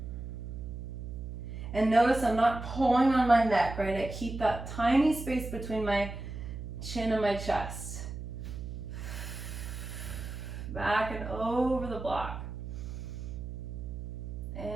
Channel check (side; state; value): right; noise; hum, 8 dB below the sound